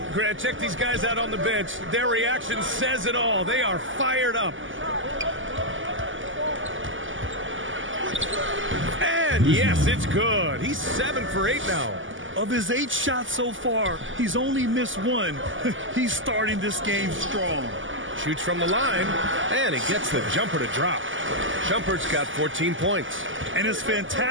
Grant, check these guys out on the bench. Their reaction says it all. They are fired up. And yes, it's good. He's 7 for 8 now. Of his 8 shots so far, he's only missed 1. He's starting this game strong. Shoots from the line, and he gets the jumper to drop. Shumpert's got 14 points. And his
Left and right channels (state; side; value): late; left; 0.57 ms